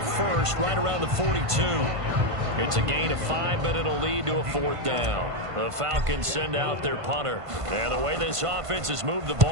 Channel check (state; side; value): late; left; 1.5 ms